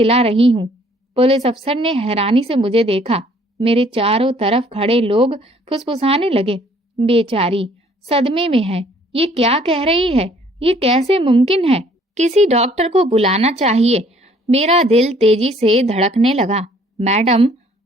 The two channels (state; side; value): normal; both; correlation 0.60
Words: रही हूँ। पुलिस अफसर ने हैरानी से मुझे देखा। मेरे चारों तरफ खड़े लोग फुसफुसाने लगे। बेचारी सदमे में है। ये क्या कह रही है? ये कैसे मुमकिन है? किसी डॉक्टर को बुलाना चाहिए। मेरा दिल तेजी से धड़कने लगा। मैडम,